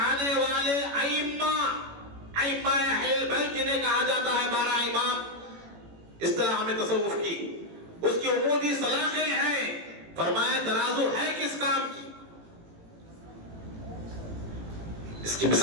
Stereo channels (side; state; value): left; late; 18 ms